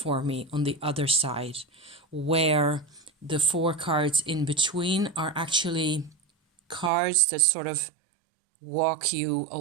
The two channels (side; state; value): left; drops out; at 6.9 s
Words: me on the other side, where the 4 cards in between are actually cards that sort of walk you